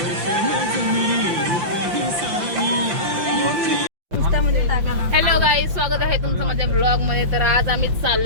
हॅलो गाईज, स्वागत आहे तुमचं माझ्या ब्लॉग मध्ये. तर आज आम्ही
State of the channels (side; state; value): left; late; 5.7 ms